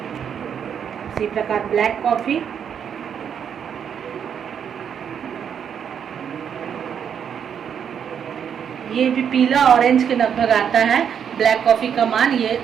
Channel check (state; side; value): quieter; left; 8.0 dB